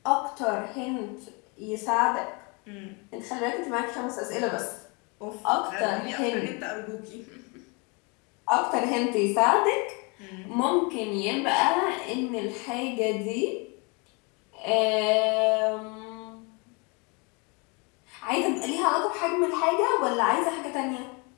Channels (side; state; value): right; quieter; 30.9 dB